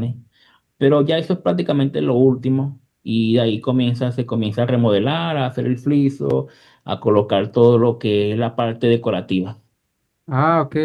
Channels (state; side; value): identical; both; correlation 1.00